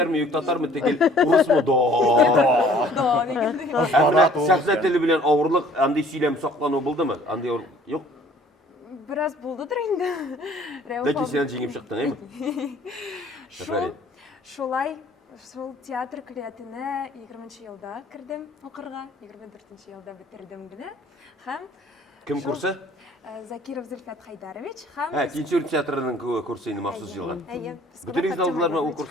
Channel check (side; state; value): both; normal; correlation 0.55